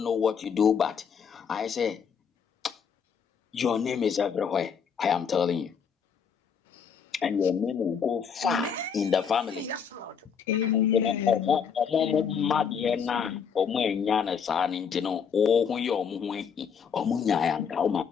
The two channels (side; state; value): right; quieter; 6.8 dB